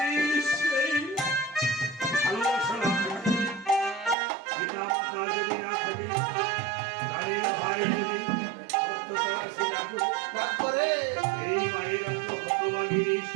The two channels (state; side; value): drops out; left; at 4.2 s